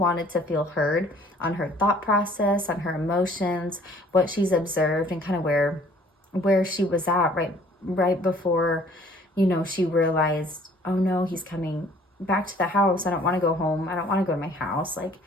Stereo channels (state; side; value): normal; both; correlation 0.56